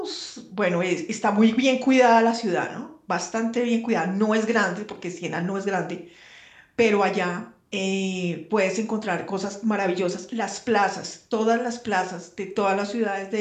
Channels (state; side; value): identical; both; correlation 1.00